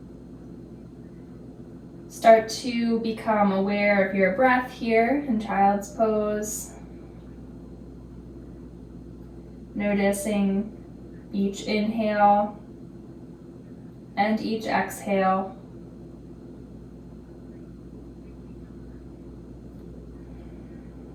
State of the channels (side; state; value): both; identical; correlation 1.00